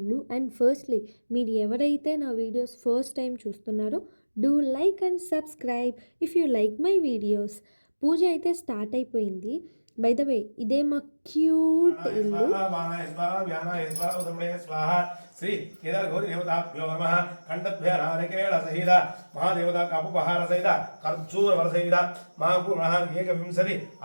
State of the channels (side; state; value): both; inverted; correlation -1.00